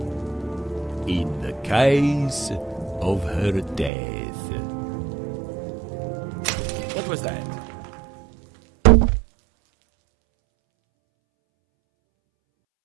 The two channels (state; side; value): drops out; left; at 3.9 s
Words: in the case of her death. What was that?